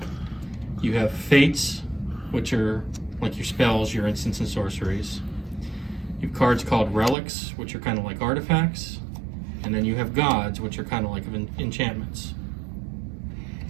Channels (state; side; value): drops out; left; at 7.2 s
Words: You have fates, which are like your spells, your instants and sorceries. You have cards called relics, which are kind of like artifacts. And then you have gods, which are kind of like enchantments.